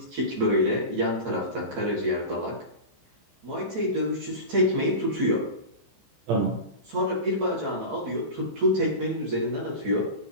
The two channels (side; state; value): left; late; 15 ms